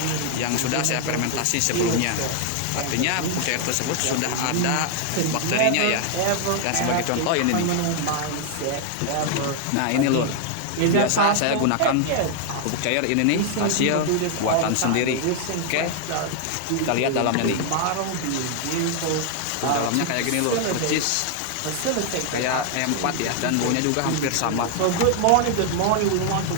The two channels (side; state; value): both; different; correlation 0.00